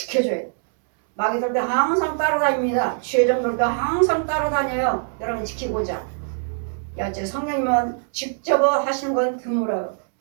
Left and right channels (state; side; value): silent; left; 64 dB below the other